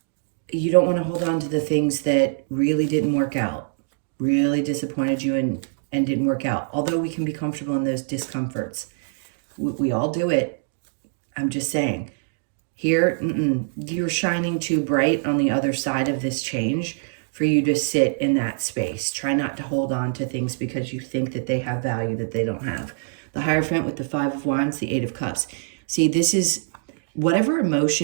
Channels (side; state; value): left; silent; digital silence